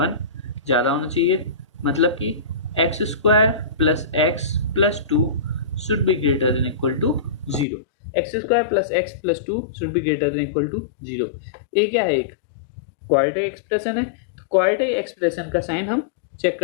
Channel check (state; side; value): drops out; right; at 7.7 s